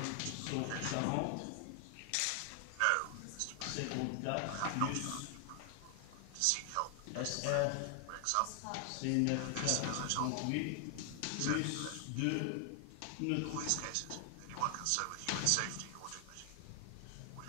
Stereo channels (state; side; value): different; both; correlation 0.00